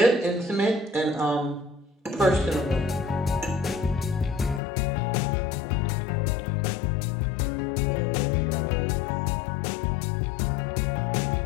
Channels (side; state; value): right; drops out; at 4.6 s